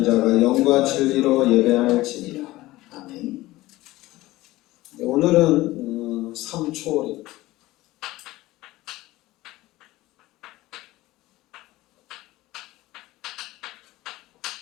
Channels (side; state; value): right; quieter; 17.9 dB